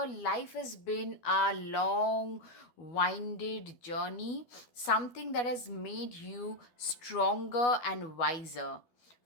life has been a long, winded journey, something that has made you stronger and wiser.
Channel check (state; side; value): late; right; 12 ms